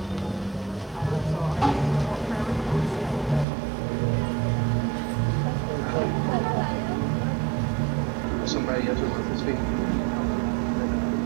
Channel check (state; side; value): drops out; left; at 3.5 s